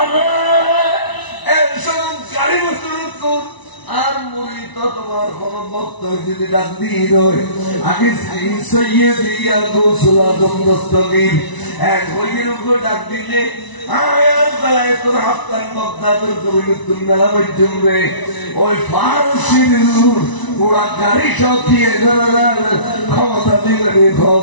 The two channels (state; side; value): late; right; 1.0 ms